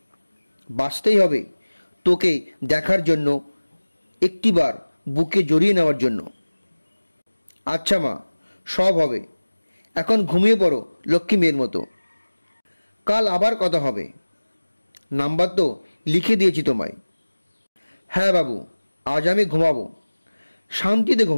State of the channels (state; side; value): inverted; both; correlation -1.00